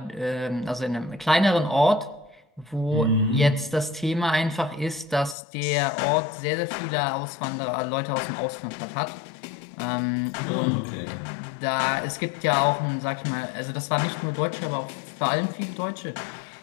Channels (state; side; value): drops out; right; at 5.4 s